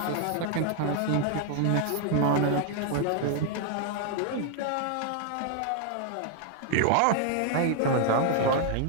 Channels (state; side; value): different; both; correlation 0.00